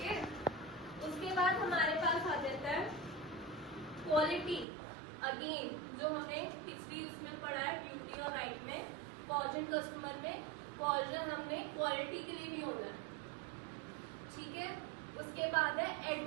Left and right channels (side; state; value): left; drops out; at 4.7 s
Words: उसके बाद हमारे पास आ जाता है क्वालिटी, अगेन जो हमने पिछली उसमें पढ़ा है ड्यूटी और राइट में, कॉजन कस्टमर में कॉजन हमने क्वालिटी के लिए भी होना है, ठीक है। उसके बाद है